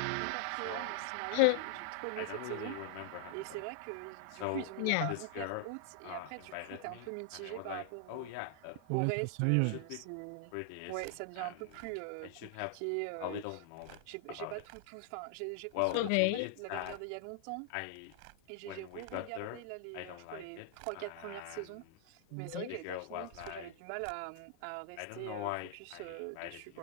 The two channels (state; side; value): different; both; correlation 0.00